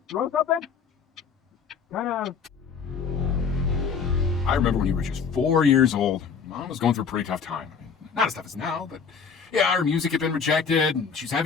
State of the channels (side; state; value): right; quieter; 6.0 dB